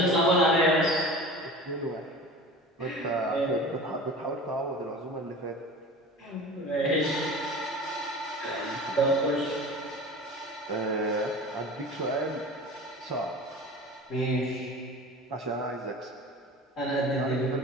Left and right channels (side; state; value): both; normal; correlation 0.36